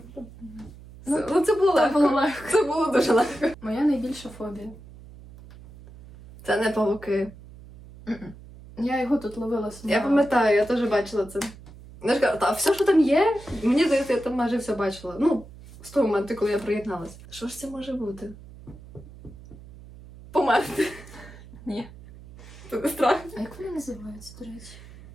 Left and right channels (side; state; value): right; noise; hum, 18 dB below the sound